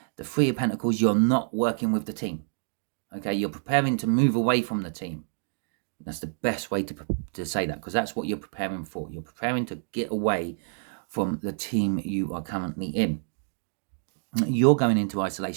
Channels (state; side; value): silent; left; digital silence